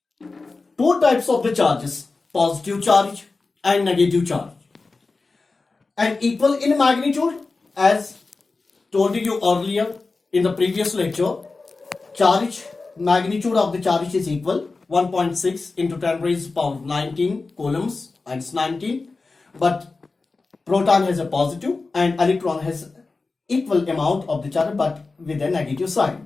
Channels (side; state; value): right; quieter; 3.8 dB